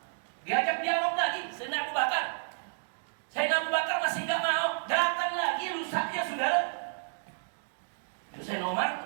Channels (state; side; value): silent; left; digital silence